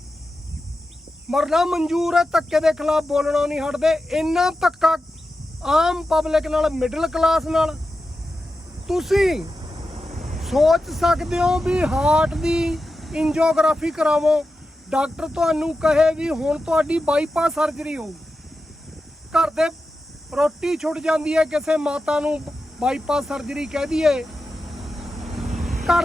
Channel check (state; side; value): normal; both; correlation 0.91